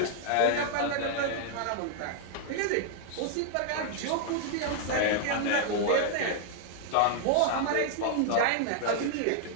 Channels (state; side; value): different; both; correlation -0.01